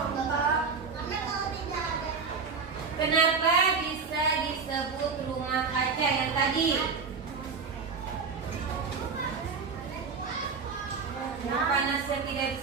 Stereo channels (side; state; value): left; quieter; 5.2 dB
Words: Kenapa bisa disebut rumah kaca yang tadi? Nah, panasnya tidak